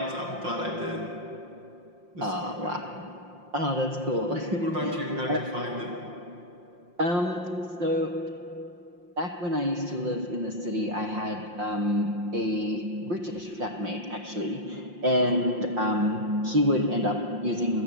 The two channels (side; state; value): left; late; 5.7 ms